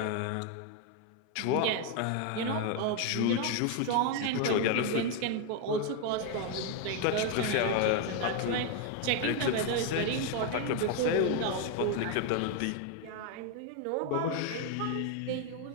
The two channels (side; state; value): both; different; correlation 0.01